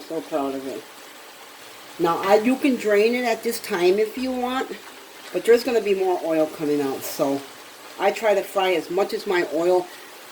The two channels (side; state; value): both; identical; correlation 1.00